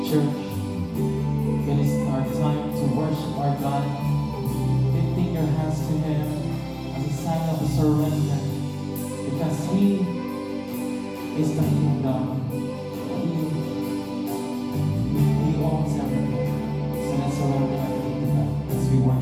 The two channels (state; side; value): identical; both; correlation 1.00